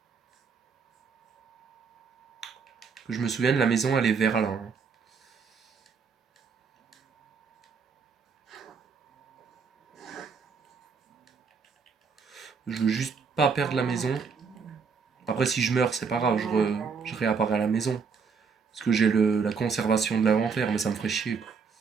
Que je me souvienne, la maison, elle est vers là, hein. Je veux juste pas perdre la maison. Après, si je meurs, c'est pas grave, je réapparais à la maison. Parce que j'ai la conservation de l'inventaire, mais ça me ferait chier, quoi.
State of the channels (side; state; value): left; quieter; 5.5 dB